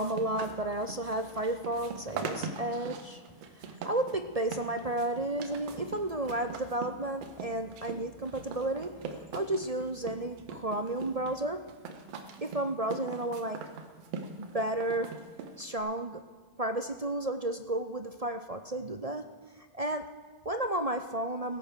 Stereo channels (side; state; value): left; late; 1.7 ms